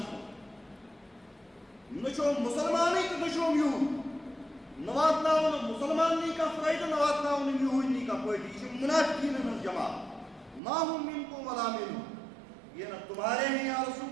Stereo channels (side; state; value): left; drops out; at 10.6 s